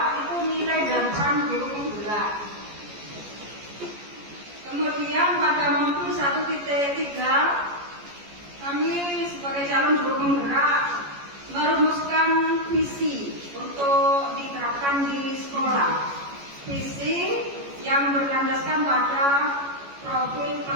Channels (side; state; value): left; late; 14 ms